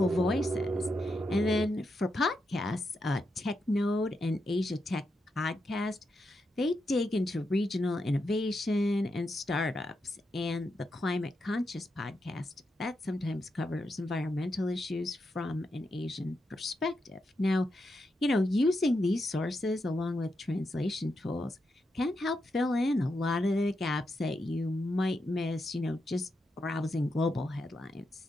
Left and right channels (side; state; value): both; normal; correlation 0.85